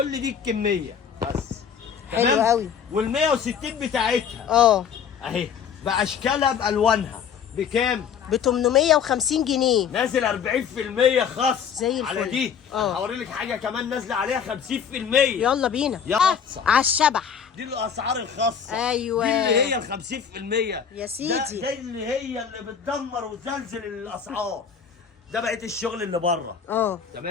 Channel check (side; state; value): right; quieter; 7.4 dB